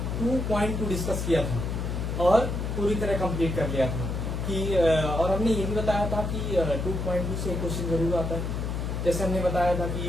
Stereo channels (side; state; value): left; noise; hum, 3 dB below the sound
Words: 2.2 डिस्कस किया था और पूरी तरह कंप्लीट कर लिया था कि और हमने ये भी बताया था कि 2.2 से क्वेश्चन जरूर आता है। जैसे हमने बताया था